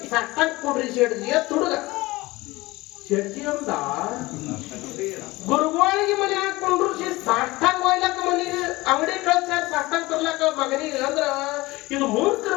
ಸಾಷ್ಟಾಗ ಕೊಡ್ರಿ ಶೆಡ್ಜಿ ಅಂತ ಹುಡುಗ. ಶೆಡ್ಜಿ ಅಂದ ಗುರುಗಳಿಗೆ ಮನೆ ಹಾಕೊಂಡ್ರು ಸಾಷ್ಟಾಗ ಹೋಯ್ಲಕ್ಕ ಮನಿಗೆ ಅಂಗಡಿ ಕಳ್ಸ್ಯಾರ ಸಾಷ್ಟಾಗ ತರ್ಲಕ್ಕ ಮಗನಿಗೆ. ಅಂದ್ರ ಇದು ಮೂರ್ಖರ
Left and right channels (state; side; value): quieter; right; 20.7 dB